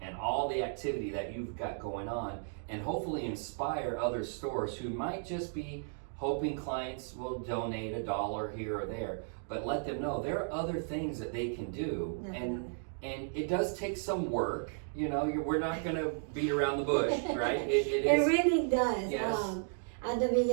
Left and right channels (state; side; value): silent; left; digital silence